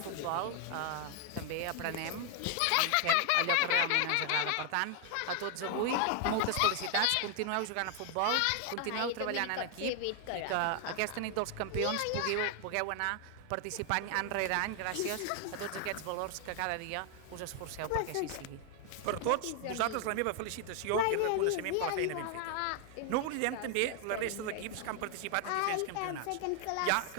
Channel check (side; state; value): both; different; correlation 0.00